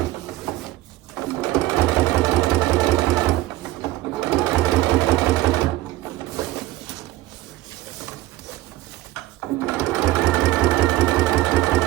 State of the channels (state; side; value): quieter; left; 16.5 dB